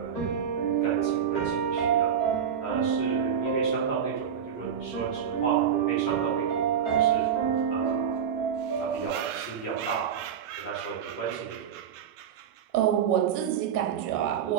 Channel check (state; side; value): quieter; left; 8.1 dB